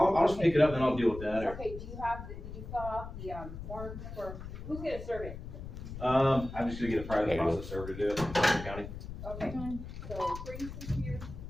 just pick it up and I'll deal with that. Okay, did you fill out the form for, who's gonna serve it? I'm just gonna get a private There you go. process server to do it in Suffolk County. Okay, so bring this here,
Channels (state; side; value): noise; left; rumble, 10 dB below the sound